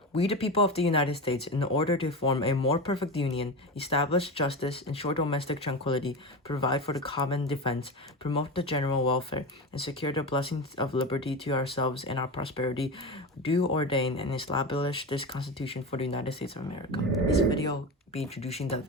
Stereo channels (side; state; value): both; normal; correlation 0.23